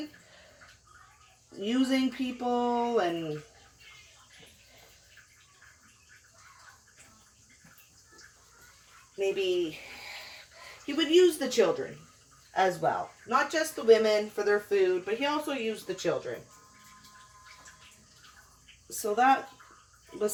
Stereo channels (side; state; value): both; identical; correlation 1.00